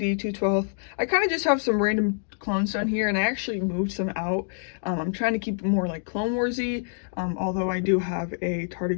212. I kind of just have some random clones down here, and I actually moved some out. I'm trying to keep it more like Clone Warsy, although I do have a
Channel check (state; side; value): silent; right; digital silence